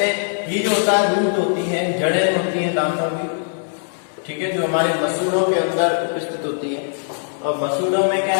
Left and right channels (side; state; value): right; silent; digital silence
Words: ये जो होता है रूट होती है, जड़ें होती हैं दांतों की, ठीक है, जो हमारे मसूड़ों के अंदर उपस्थित होती है। और मसूड़ों में क्या